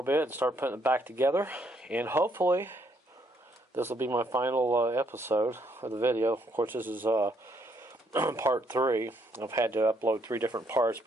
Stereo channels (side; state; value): both; normal; correlation 0.71